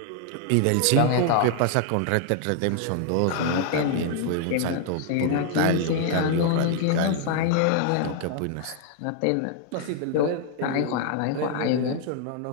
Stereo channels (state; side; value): different; both; correlation 0.00